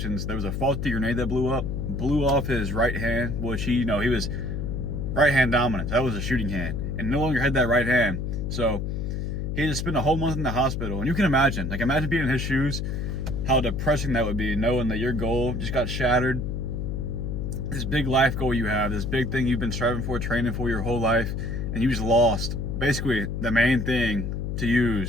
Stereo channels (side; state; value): left; noise; hum, 3 dB below the sound